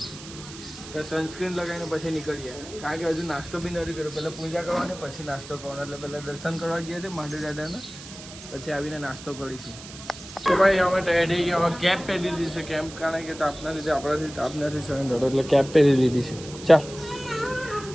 તો સનસ્ક્રીન લગાવીને પછી નીકળીએ કારણ કે હજુ નાસ્તો બી નથી કર્યો. પહેલાં પૂજા કરવાની પછી નાસ્તો કરવાનો, એટલે પહેલાં દર્શન કરવા ગયા છે મહાદેવ દાદાના, પછી આવીને નાસ્તો કરીશું. તો ભાઈ અમે તૈયાર થઈ ગયા. હવે કેપ પહેરી લીધી છે, કેમ કારણ કે તાપના લીધે આપણાથી તાપ નથી સહન થતો એટલે કેપ પહેરી લીધી છે. ચાલ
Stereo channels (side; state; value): right; noise; hiss, 15 dB below the sound